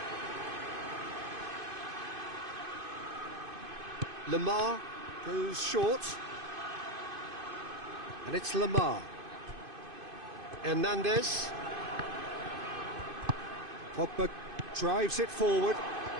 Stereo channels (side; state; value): left; late; 2.5 ms